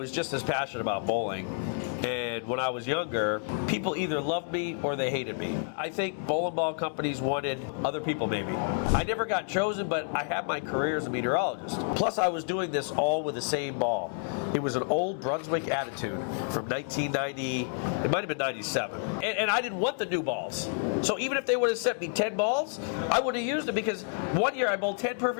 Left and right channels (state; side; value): silent; right; 58 dB below the other